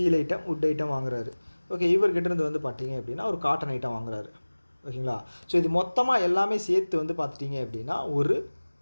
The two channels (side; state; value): both; inverted; correlation -1.00